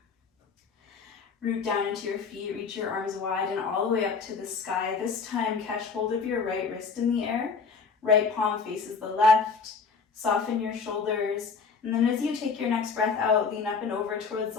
Root down into your feet, reach your arms wide and all the way up to the sky. This time, catch hold of your right wrist in the air. Right palm faces the left. Soften your shoulders. And then as you take your next breath out, lean up and over towards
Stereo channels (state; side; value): quieter; right; 5.3 dB